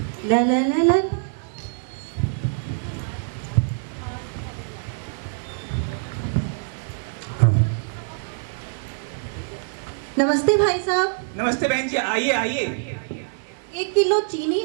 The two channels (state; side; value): silent; left; digital silence